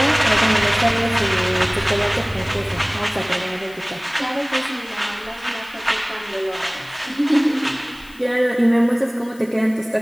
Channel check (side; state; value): left; noise; hiss, 24 dB below the sound